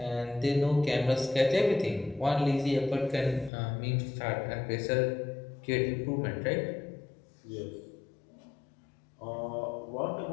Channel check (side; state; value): right; drops out; at 3.5 s